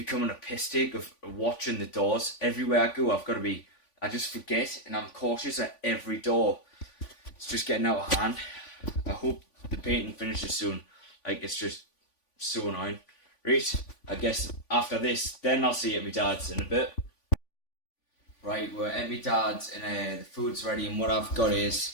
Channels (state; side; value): late; right; 3.5 ms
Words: a piss take of watching the doors. Everywhere I go, I just forget and I'm cautious at every door. It's just getting out of hand. I hope the painting finishes soon. Like, it's just so annoying. Right, I guess after this, then I'll see you at my dad's in a bit. Right, we're at my dad's and the food's ready and what I've got